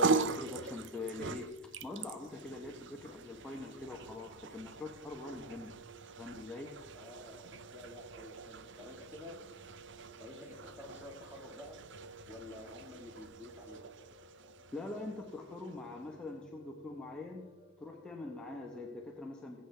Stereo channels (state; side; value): normal; both; correlation 0.14